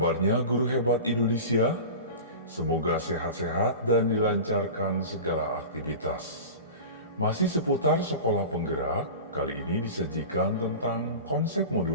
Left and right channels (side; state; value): both; inverted; correlation -0.32